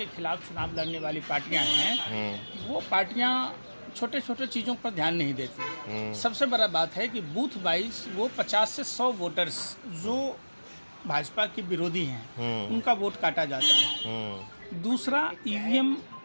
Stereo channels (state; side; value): inverted; both; correlation -1.00